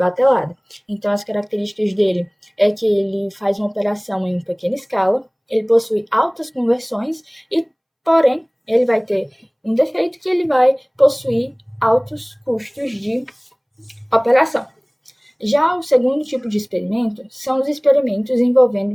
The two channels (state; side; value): identical; both; correlation 1.00